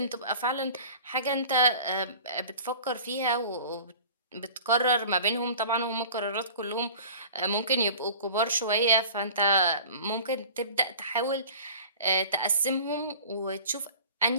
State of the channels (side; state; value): both; inverted; correlation -0.42